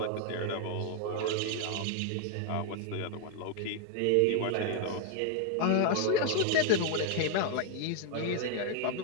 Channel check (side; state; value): both; different; correlation 0.00